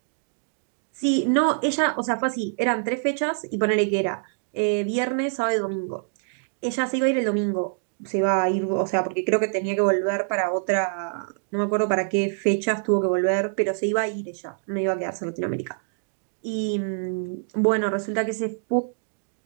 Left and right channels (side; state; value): left; silent; digital silence